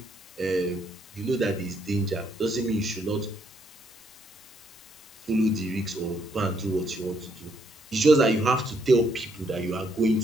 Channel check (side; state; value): both; normal; correlation 0.72